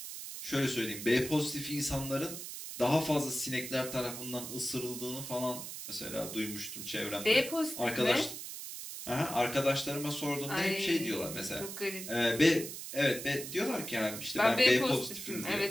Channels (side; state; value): right; noise; hiss, 8 dB below the sound